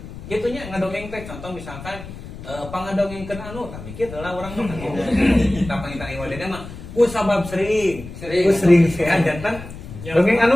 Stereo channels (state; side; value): noise; left; rumble, 13 dB below the sound